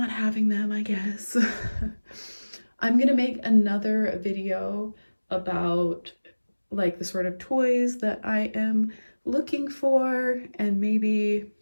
having them, I guess. I'm gonna make another video about like the sort of toys that I am looking for and maybe,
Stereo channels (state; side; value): inverted; both; correlation -1.00